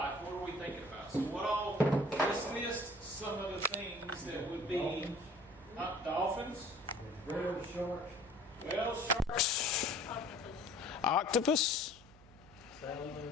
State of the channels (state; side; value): noise; right; hum, 23 dB below the sound